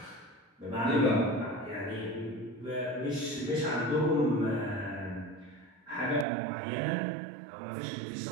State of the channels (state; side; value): drops out; left; at 6.2 s